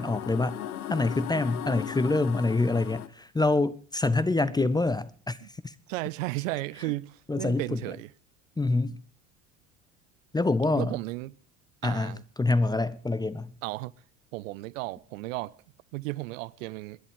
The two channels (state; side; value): normal; both; correlation 0.76